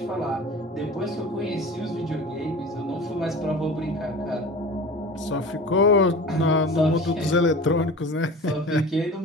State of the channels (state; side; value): normal; both; correlation 0.36